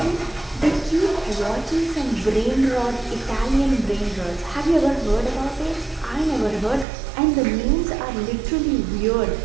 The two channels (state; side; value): drops out; left; at 6.9 s